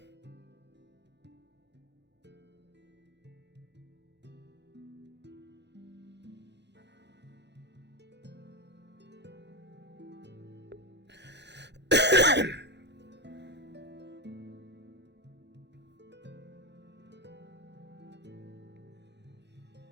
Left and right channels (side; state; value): left; late; 0.50 ms